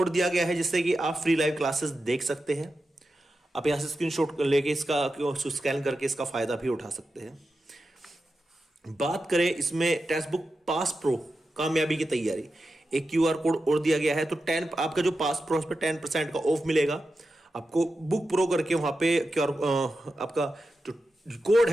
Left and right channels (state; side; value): normal; both; correlation 0.90